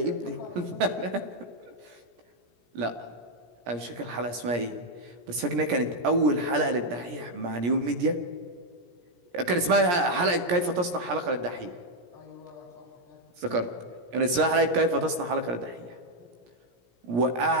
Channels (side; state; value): left; late; 17 ms